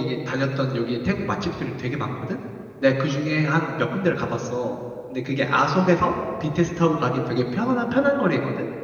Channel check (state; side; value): identical; both; correlation 1.00